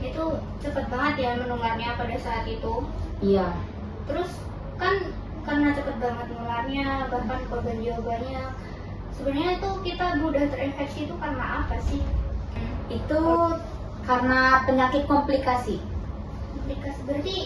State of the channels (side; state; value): both; identical; correlation 1.00